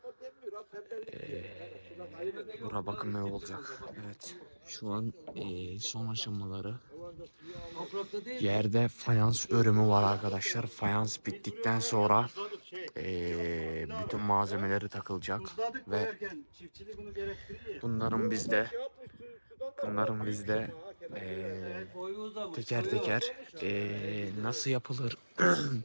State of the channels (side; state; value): both; inverted; correlation -1.00